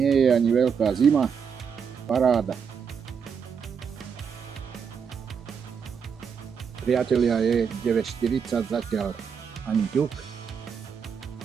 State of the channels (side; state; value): left; quieter; 6.7 dB